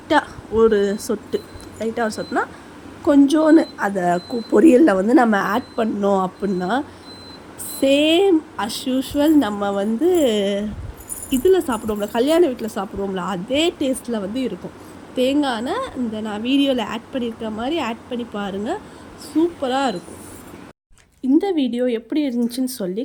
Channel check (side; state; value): both; identical; correlation 1.00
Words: ஒரு சொட்டுனா கொஞ்சோன்னு அதை பொரியலில் வந்து நம்ம ஆட் பண்ணோம் அப்படின்னா சேம் அஸ் யூஷுவல் நம்ம வந்து இதில் சாப்பிடுவோம்ல, கல்யாண வீட்டில் சாப்பிடுவோம்ல, அதே டேஸ்ட்டில் வந்து இருக்கும். தேங்காய் எண்ணெய் இந்த நான் வீடியோவில் ஆட் பண்ணியிருக்க மாதிரி ஆட் பண்ணி பாருங்கள், சூப்பராக இருக்கும். இந்த வீடியோ எப்படி இருந்துச்சுன்னு சொல்லி